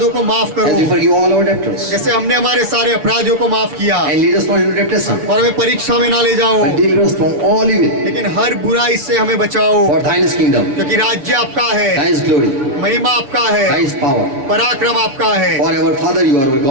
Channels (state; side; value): late; left; 7.2 ms